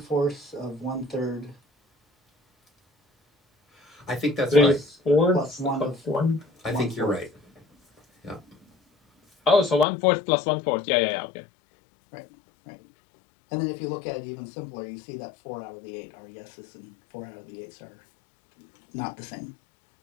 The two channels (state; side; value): drops out; right; at 9.9 s